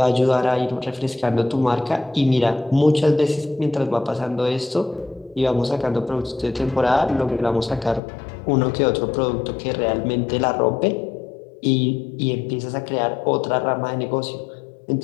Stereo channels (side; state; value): right; drops out; at 8.0 s